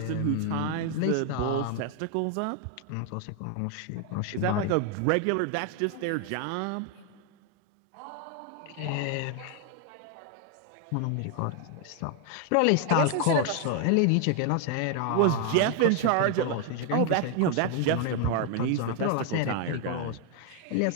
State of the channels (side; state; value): both; different; correlation 0.00